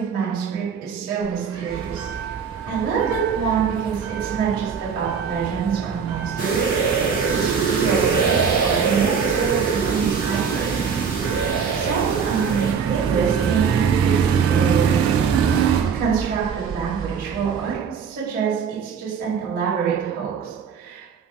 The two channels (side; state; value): left; quieter; 6.5 dB